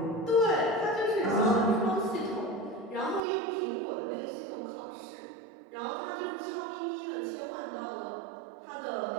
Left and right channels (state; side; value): drops out; left; at 3.2 s